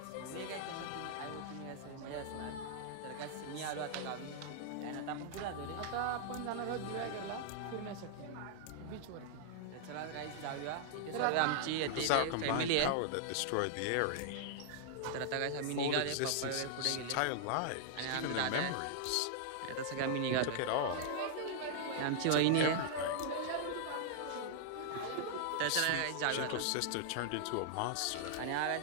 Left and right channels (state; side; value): different; both; correlation -0.01